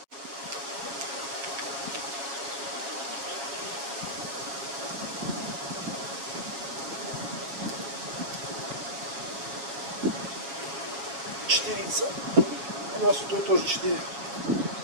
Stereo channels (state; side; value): late; left; 7.3 ms